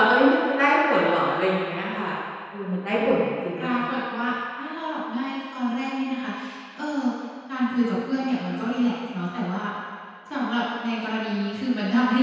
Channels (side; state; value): both; identical; correlation 1.00